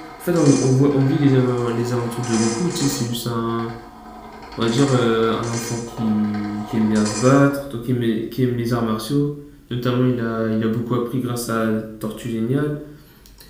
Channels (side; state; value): both; identical; correlation 1.00